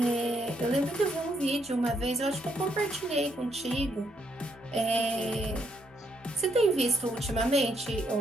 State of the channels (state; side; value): normal; both; correlation 0.74